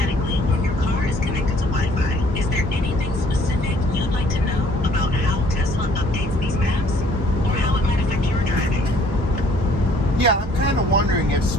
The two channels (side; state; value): both; normal; correlation 0.59